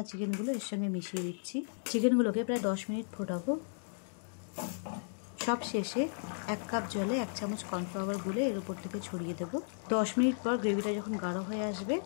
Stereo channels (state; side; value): silent; right; digital silence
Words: চিকেনগুলো এর সঙ্গে মিশিয়ে দিচ্ছি। চিকেনগুলোকে প্রায় 10 মিনিট ফোটাবো। সব শেষে 1 কাপ জলে 1 চামচ কর্নফ্লাওয়ার গুলে এর উপর থেকে ছড়িয়ে দেব। 10 মিনিট পর গ্রেভিটা যখন গাঢ় হয়ে আসবে